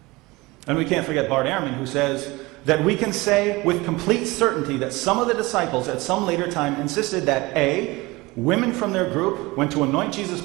And we can't forget Bart Ehrman, who says that we can say with complete certainty that some of the disciples at some later time insisted that A, women from their group went to anoint Jesus'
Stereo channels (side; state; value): left; quieter; 22.2 dB